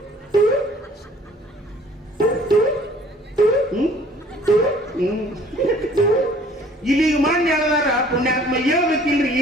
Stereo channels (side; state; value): both; normal; correlation 0.55